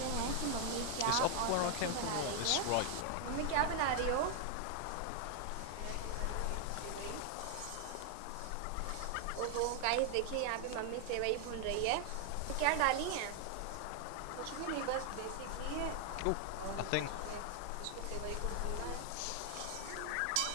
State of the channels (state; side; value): different; both; correlation 0.00